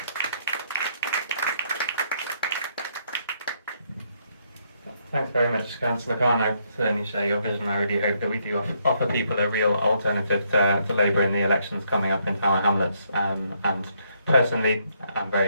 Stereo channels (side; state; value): both; inverted; correlation -0.73